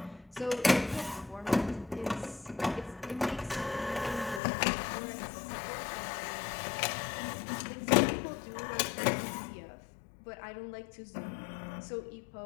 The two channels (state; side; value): drops out; right; at 4.4 s